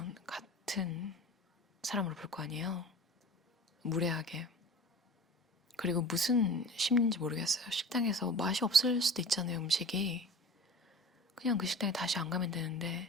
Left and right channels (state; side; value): normal; both; correlation 0.38